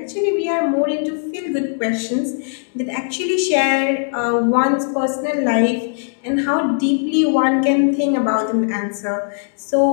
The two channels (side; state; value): right; silent; digital silence